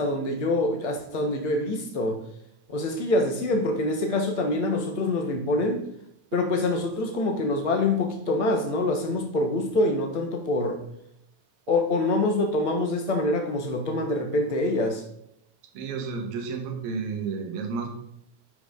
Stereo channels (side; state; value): left; late; 8.5 ms